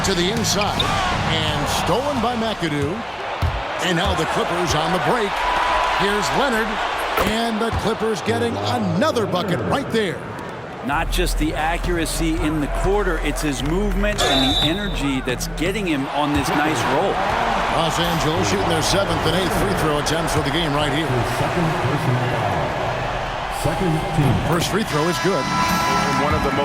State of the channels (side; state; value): both; identical; correlation 1.00